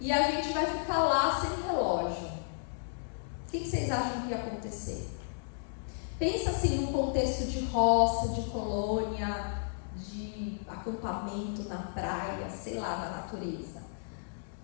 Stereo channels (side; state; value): right; silent; digital silence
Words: a gente vai ficar lá sem relógio. O que vocês acham que ia acontecer? Pensa assim num contexto de roça, de colônia, de acampamento na praia, sei lá, na natureza.